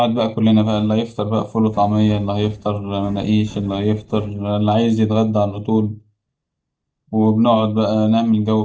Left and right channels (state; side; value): identical; both; correlation 1.00